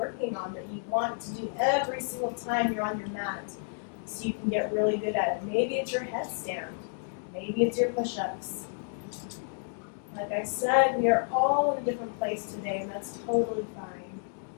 on, that you want to do every single time you're on your mat, so you can get really good at it. Maybe it's your headstand. Maybe it's your push-ups. Like I said, we are all in a different place today, and that's totally fine.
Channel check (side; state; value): right; silent; digital silence